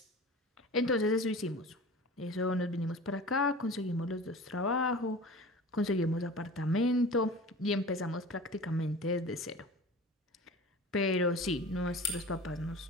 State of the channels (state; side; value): normal; both; correlation 0.38